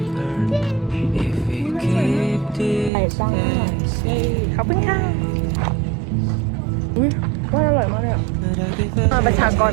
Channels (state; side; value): drops out; left; at 2.9 s